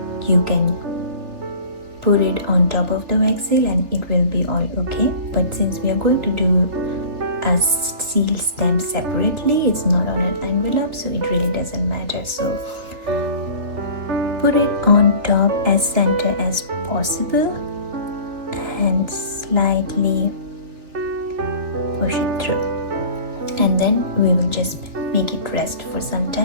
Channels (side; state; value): left; late; 3.4 ms